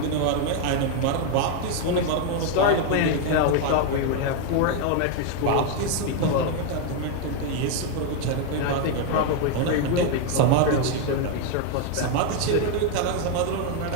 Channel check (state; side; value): different; both; correlation 0.01